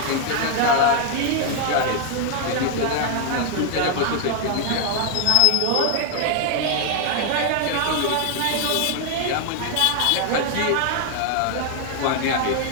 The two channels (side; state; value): both; different; correlation 0.00